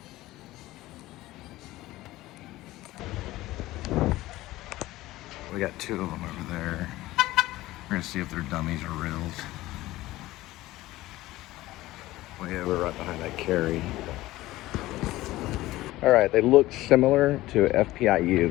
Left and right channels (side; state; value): right; quieter; 17.2 dB